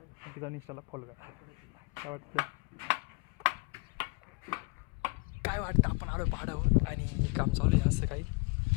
आणखी जाऊन इंस्टाला फॉलो करा. काय वाटतं आपण आलो पहाडावर आणि काम चालू आहे असं काही.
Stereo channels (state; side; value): quieter; right; 30.3 dB